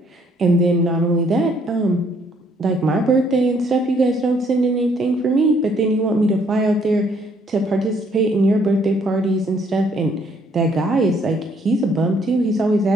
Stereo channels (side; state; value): both; normal; correlation 0.66